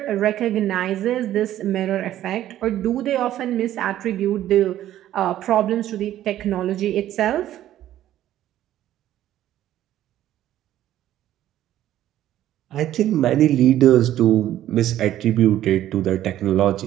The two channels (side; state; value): left; quieter; 12.7 dB